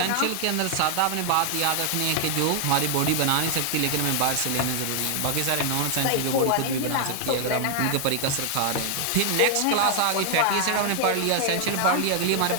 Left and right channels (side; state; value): both; different; correlation 0.00